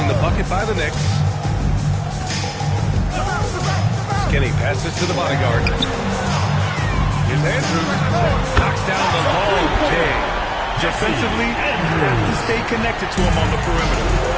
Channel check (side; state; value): both; identical; correlation 1.00